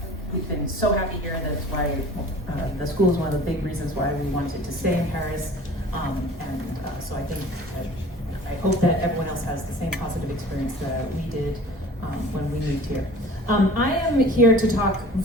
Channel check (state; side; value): normal; both; correlation 0.44